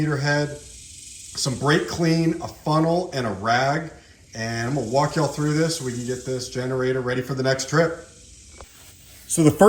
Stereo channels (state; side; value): identical; both; correlation 1.00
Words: head, some brake clean, a funnel, and a rag. And I'm gonna walk y'all through this so we can get this generator ready for the next trip. So the